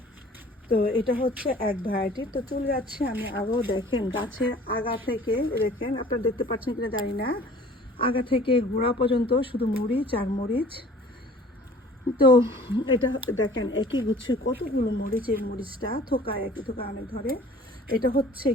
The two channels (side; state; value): both; normal; correlation 0.49